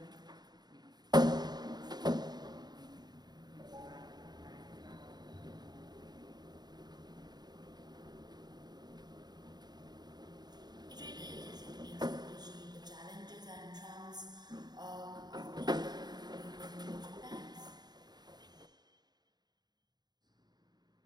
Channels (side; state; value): left; late; 0.20 ms